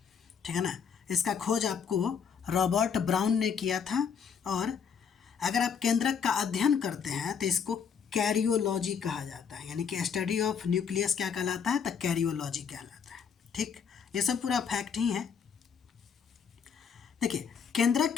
ठीक है ना। इसका खोज आपको रॉबर्ट ब्राउन ने किया था। और अगर आप केंद्रक का अध्ययन करते हैं तो इसको कैरियोलॉजी कहा जाता है, यानी कि स्टडी ऑफ न्यूक्लियस क्या कहलाता है, तो कैरियोलॉजी कहलाता है। ठीक, ये सब पूरा फैक्ट ही है। देखिए, केंद्रक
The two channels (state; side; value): quieter; right; 6.8 dB